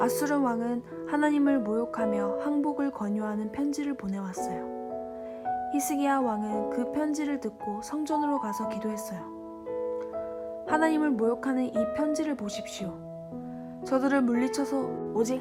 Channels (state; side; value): identical; both; correlation 1.00